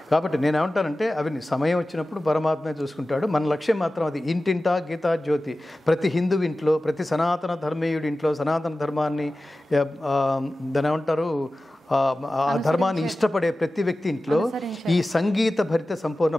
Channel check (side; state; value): both; normal; correlation 0.95